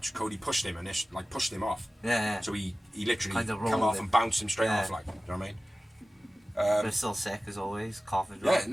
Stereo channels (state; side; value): normal; both; correlation 0.96